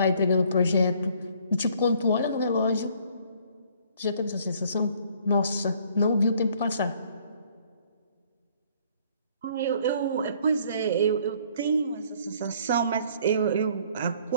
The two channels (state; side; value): inverted; both; correlation -0.60